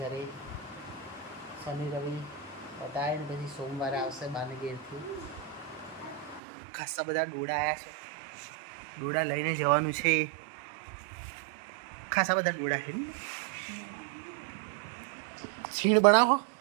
શનિ રવિ પતાવીને પછી સોમવારે આવશે બાને ઘેરથી. ખાસા બધા ડોડા આવ્યા છે. ડોડા લઈને જવાનું છે. ખાસા બધા ડોડા છે ને. છીણ બનાવો.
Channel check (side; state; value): left; drops out; at 6.4 s